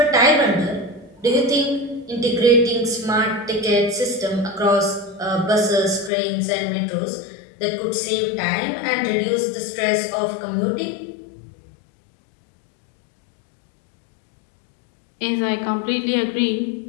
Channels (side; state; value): right; drops out; at 6.1 s